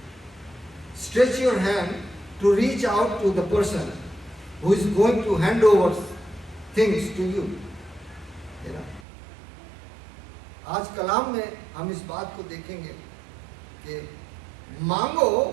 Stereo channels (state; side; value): drops out; left; at 9.1 s